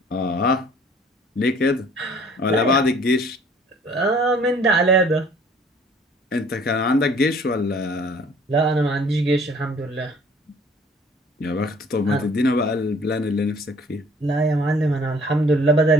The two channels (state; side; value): normal; both; correlation 0.54